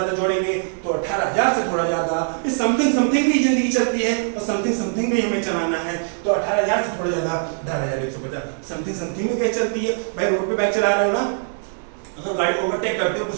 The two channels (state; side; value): silent; left; digital silence